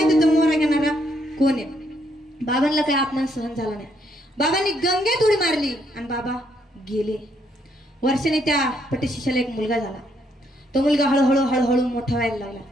होतं मोहरा घेणारा कोण आहे. बाबांना काही अपमान सहन झाला नाही. बाबांनी गंगेत उडी मारली आणि बाबा गेले. वर्षाने त्या पटशिष्याला एक मुलगा झाला. तो मुलगा हळूहळू मोठा व्हायला लागला.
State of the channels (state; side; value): normal; both; correlation 0.73